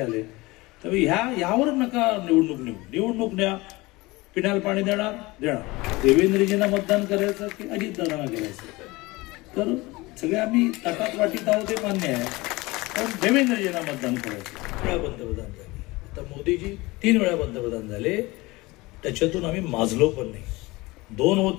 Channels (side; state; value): right; quieter; 22.0 dB